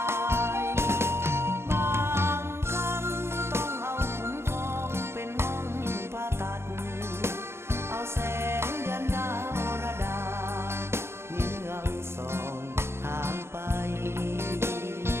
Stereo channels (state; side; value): late; left; 0.12 ms